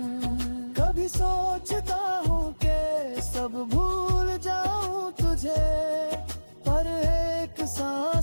कभी सोचता हूँ कि सब भूल जाऊं तुझे, पर एक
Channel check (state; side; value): inverted; both; correlation -1.00